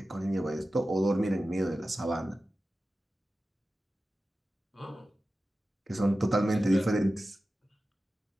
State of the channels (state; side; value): normal; both; correlation 0.94